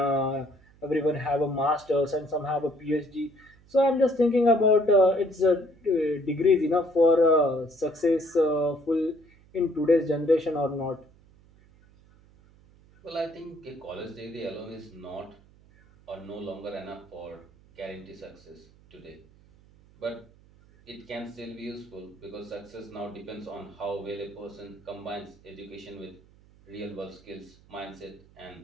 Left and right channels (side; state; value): right; noise; hum, 27 dB below the sound